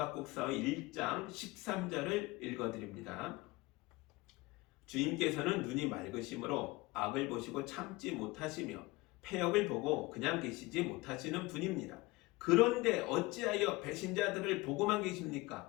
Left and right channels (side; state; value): right; quieter; 22.2 dB